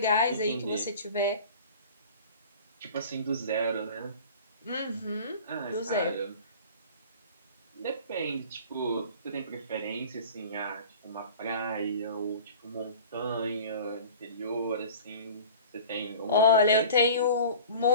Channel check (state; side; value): inverted; both; correlation -0.42